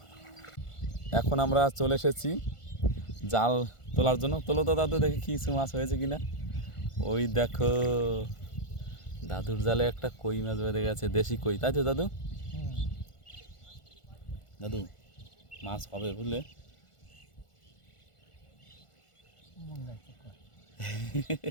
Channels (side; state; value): right; late; 1.4 ms